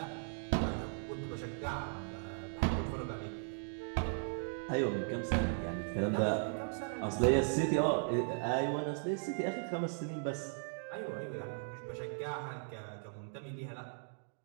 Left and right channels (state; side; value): silent; left; digital silence